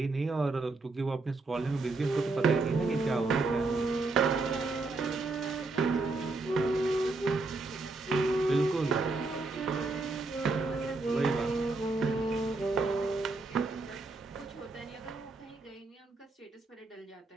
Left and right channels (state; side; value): quieter; left; 3.5 dB